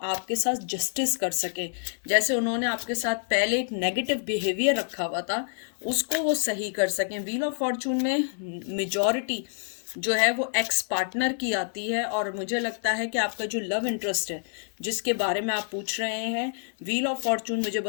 साथ जस्टिस कर सकें। जैसे उन्होंने आपके साथ पहले एक नेगेटिव बिहेवियर रखा हुआ था, उसको वो सही कर सकें। व्हील ऑफ फॉर्चून में मेजॉरिटी जो है वो एक्स पार्टनर की आती है, और मुझे लगता है कि आपका जो लव इंटरेस्ट है जिसके बारे में आप पूछ रहे हैं, व्हील ऑफ फॉर्चून मुझे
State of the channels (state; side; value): silent; right; 57 dB below the other